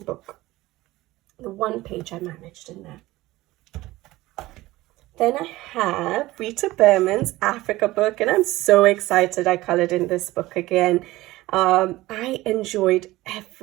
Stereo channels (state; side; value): quieter; left; 18.2 dB